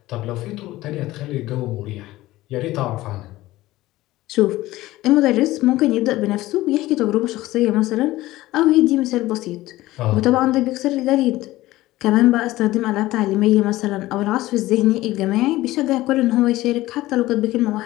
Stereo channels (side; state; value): right; quieter; 17.2 dB